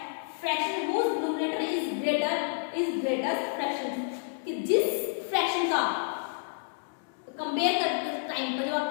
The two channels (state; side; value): silent; right; digital silence